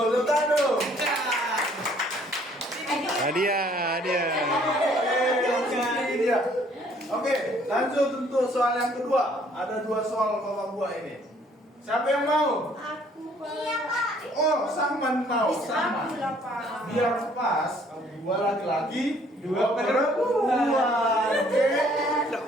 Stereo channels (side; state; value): both; normal; correlation 0.61